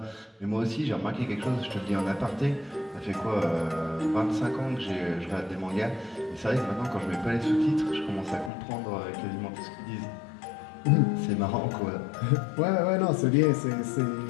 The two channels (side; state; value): right; drops out; at 8.5 s